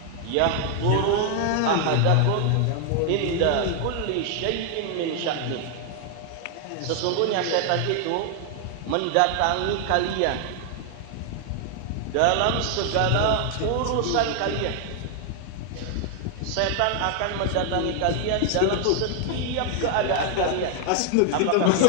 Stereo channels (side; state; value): both; different; correlation 0.00